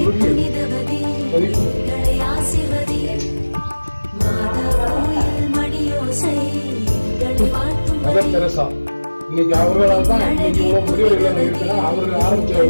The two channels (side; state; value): both; inverted; correlation -1.00